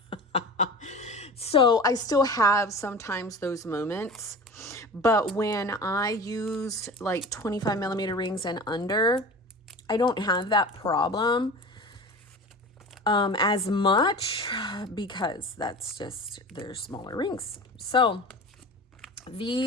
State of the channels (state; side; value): normal; both; correlation 0.36